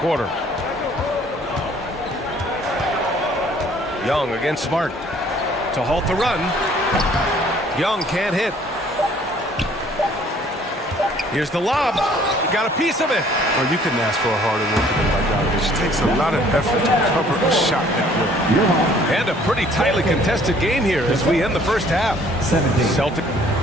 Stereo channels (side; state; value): both; normal; correlation 0.57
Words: Young against Smart to halt the run. Young can't hit. Here's the lob. He got a piece of it. Well, you couldn't ask for a harder worker than Bogdanovich. It takes a lot of effort to cover a shot that way. And a pretty tightly contested game here as we end the first half. 17. Celtic.